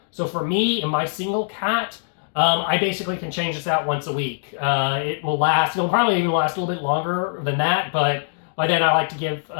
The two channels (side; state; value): right; silent; digital silence